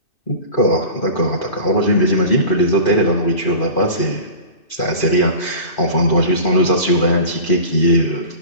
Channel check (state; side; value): late; right; 2.6 ms